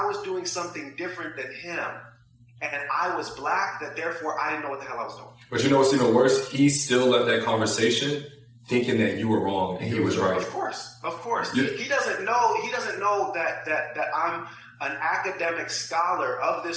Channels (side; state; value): both; identical; correlation 1.00